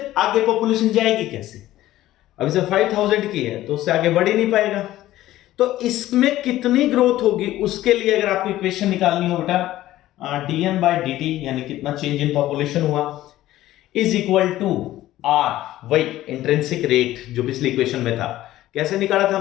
आगे पॉपुलेशन जाएगी कैसे? अब इसे 5000 की है तो उससे आगे बढ़ ही नहीं पाएगा। तो इसमें कितनी ग्रोथ होगी उसके लिए अगर आपको इक्वेशन निकालनी हो बेटा, dn/dt यानी कितना चेंज इन पॉपुलेशन हुआ, इज इक्वल टू आर, वही इंट्रिंसिक रेट जो पिछली इक्वेशन में था। कैसे निकाला था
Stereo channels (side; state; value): right; quieter; 14.8 dB